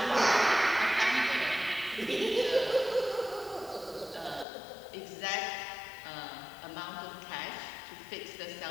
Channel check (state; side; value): drops out; right; at 4.5 s